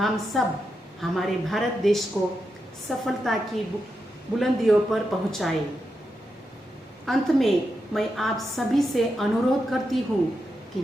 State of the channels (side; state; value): both; normal; correlation 0.86